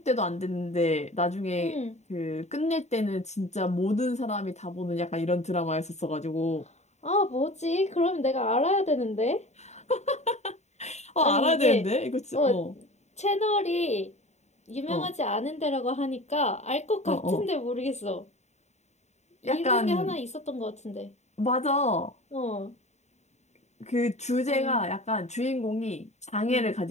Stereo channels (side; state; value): right; late; 0.33 ms